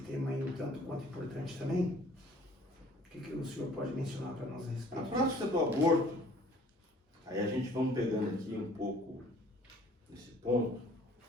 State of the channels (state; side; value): normal; both; correlation 0.54